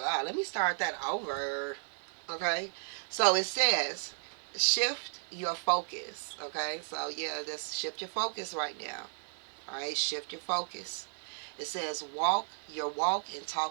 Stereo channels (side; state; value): left; silent; 55 dB below the other